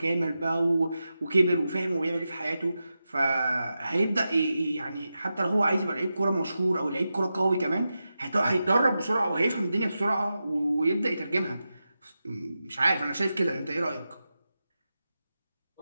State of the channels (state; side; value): inverted; both; correlation -0.91